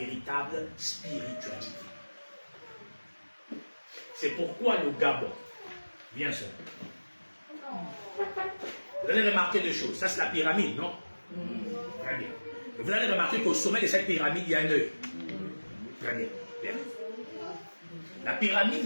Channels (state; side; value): inverted; both; correlation -1.00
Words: spiritualité. C'est pourquoi le Gabon, bien sûr. Vous allez remarquer deux choses. Ça, c'est la pyramide, non? Très bien. Et vous allez remarquer qu'au sommet de cette pyramide, il y a un œil. Très bien. Bien. La pyramide